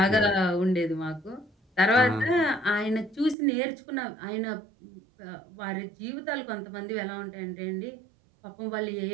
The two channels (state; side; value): drops out; left; at 3.4 s